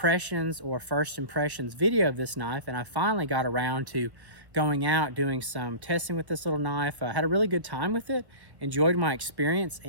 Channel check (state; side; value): late; left; 1.4 ms